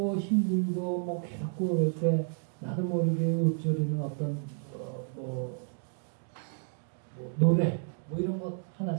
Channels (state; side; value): silent; left; 57 dB below the other